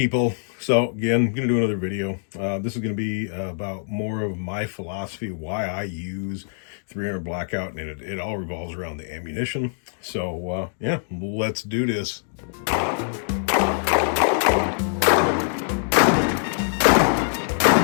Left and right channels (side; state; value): right; silent; 63 dB below the other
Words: So again, I'm gonna do another video. This is gonna be about more of my philosophy, why I use 300 Blackout, and it all revolves around the ammunition. So yeah, let's do this.